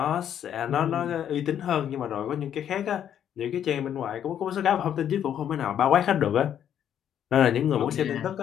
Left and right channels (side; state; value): right; quieter; 9.7 dB